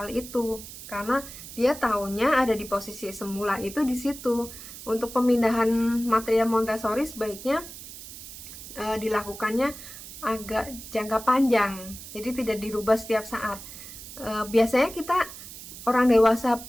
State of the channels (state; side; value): noise; right; hiss, 13 dB below the sound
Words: itu karena dia taunya ada di posisi semula itu di situ. Untuk pemindahan material Montessori sebaiknya dilakukannya agak jangka panjang, jadi tidak dirubah setiap saat. Biasanya kita orang dewasa